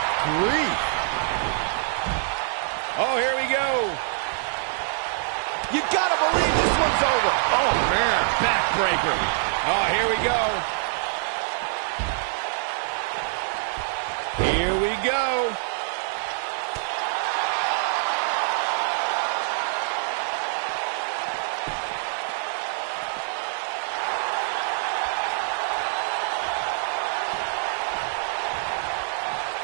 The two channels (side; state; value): left; silent; 56 dB below the other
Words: grief. Oh, here we go. You gotta believe this one's over. Oh, man. Backbreaker. Oh, here we go. Here we go.